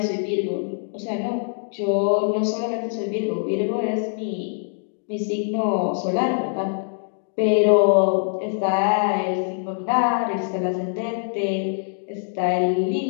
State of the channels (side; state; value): right; silent; digital silence